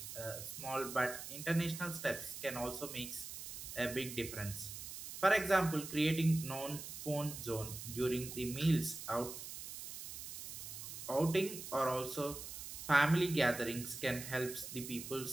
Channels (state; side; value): noise; right; hiss, 9 dB below the sound